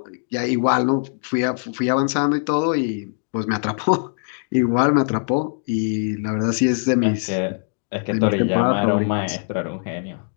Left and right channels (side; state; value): right; silent; digital silence